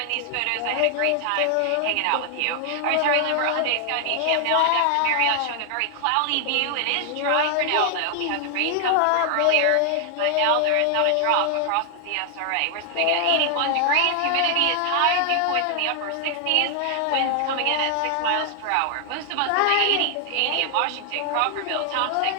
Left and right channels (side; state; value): both; different; correlation 0.00